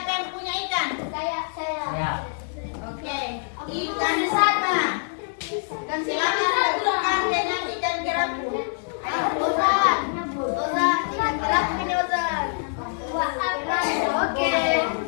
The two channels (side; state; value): right; silent; 62 dB below the other